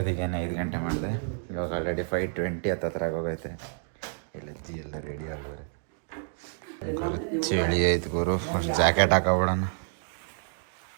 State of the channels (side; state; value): left; silent; 59 dB below the other